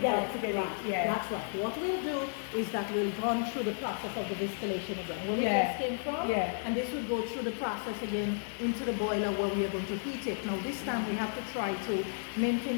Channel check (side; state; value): right; silent; digital silence